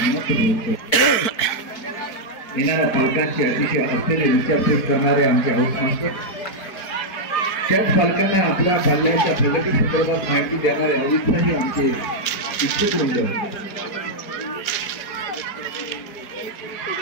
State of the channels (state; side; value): late; right; 4.7 ms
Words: येणाऱ्या पालकांची अतिशय असलेले विचारपूस करणारे आमचे हाऊस मास्टर, त्याच पालकांना आपल्या पाल्याच्या प्रगती संदर्भात माहिती देणारे अवित्साही आमचे शिक्षक वृंद